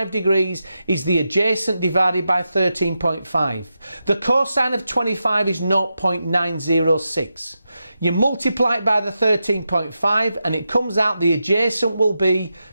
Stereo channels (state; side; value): inverted; both; correlation -0.88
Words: degrees is the adjacent divided by 13.5. The cosine of 25 is 0.906. You multiply it by the 13.5 and it comes out the adjacent will be